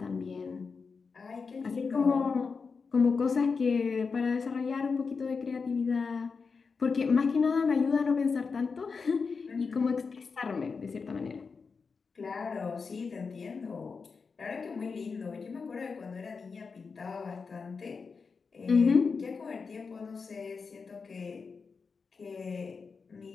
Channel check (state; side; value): quieter; right; 5.0 dB